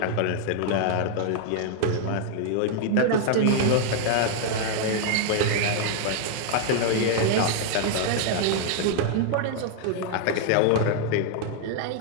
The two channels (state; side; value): different; both; correlation 0.00